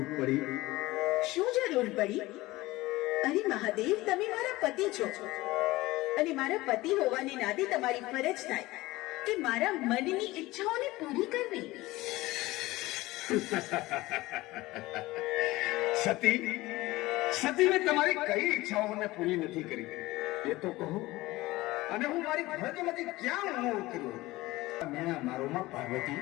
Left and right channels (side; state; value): right; quieter; 19.2 dB